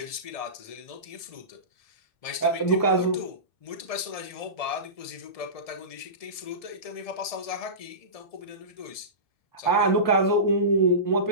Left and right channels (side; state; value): right; late; 1.7 ms